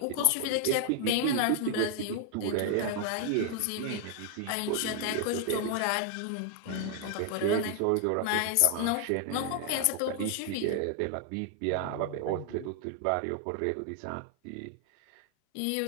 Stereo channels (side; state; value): both; different; correlation 0.00